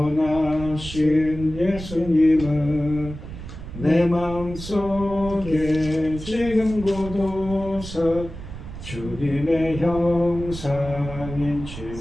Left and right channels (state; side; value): noise; right; rumble, 11 dB below the sound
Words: 예수님을 내 마음속에 지금 고도서 주님의 형상인